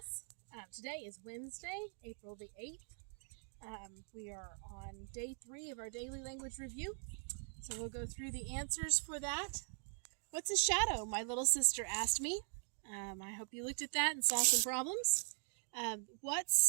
Today is Wednesday, April the 8th. We are on day 3 of our daily language review. So we'll go through the answers for that. What's a shadow? My little sister asked me. I hope you looked at that and saw some problems.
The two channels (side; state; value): left; silent; 50 dB below the other